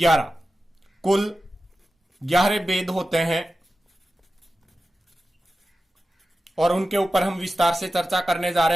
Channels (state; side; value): normal; both; correlation 0.93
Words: कुल 11 भेद होते हैं, और उनके ऊपर हम विस्तार से चर्चा करने जा